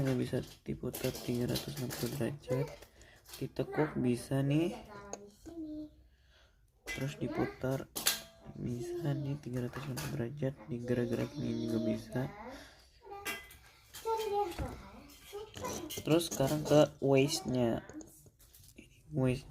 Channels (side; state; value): both; identical; correlation 1.00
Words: nggak bisa diputar 360 derajat. Ditekuk bisa nih. Terus diputar bisa nih 360 derajat. Digerak-gerakin ini juga bisa. Terus sekarang ke waistnya.